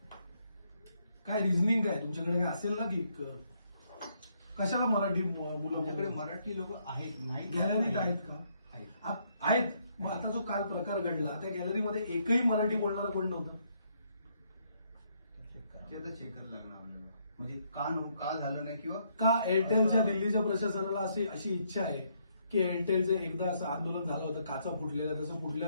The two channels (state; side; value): inverted; both; correlation -0.72